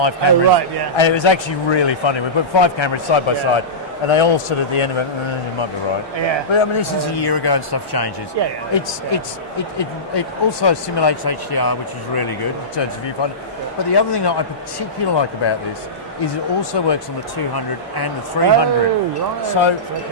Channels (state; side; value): normal; both; correlation -0.18